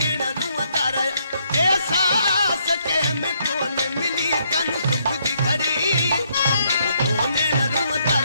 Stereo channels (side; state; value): both; inverted; correlation -0.72